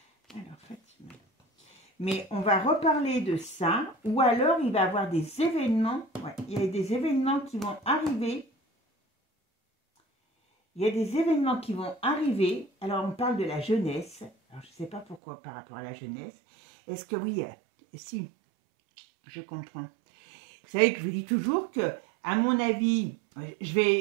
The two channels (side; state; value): left; drops out; at 15.2 s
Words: Alors, Fatima. Mais on va reparler de ça, ou alors il va y avoir des événements, ouais, il y a des événements qui vont arriver. Il y a des événements qui vont arriver. Alors, on parle de la jeunesse. Alors, je ne sais pas pourquoi par rapport à la jeunesse. Est-ce que oui, si, je comprends. Vous savez que je vous dis toujours que, à mon avis, je